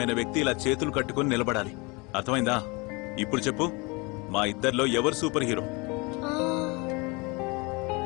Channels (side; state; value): right; quieter; 27.5 dB